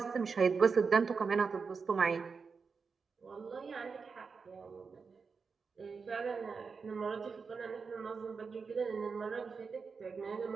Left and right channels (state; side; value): quieter; left; 5.1 dB